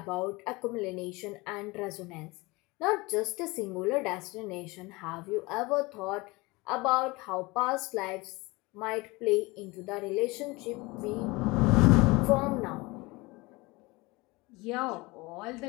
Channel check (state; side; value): quieter; right; 23.5 dB